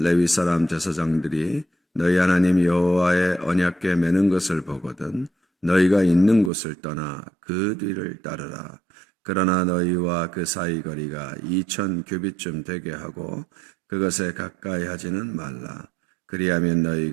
레위 사람 제사장들이 너희 하나님 여호와의 언약궤 매는 것을 보거든 너희가 있는 곳을 떠나 그 뒤를 따르라. 그러나 너희와 그 사이 거리가 2000규빗쯤 되게 하고 그것에 가까이 하지는 말라. 그리하면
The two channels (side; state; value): left; drops out; at 6.5 s